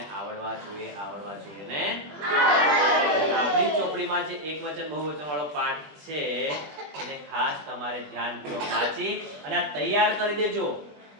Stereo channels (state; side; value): late; left; 20 ms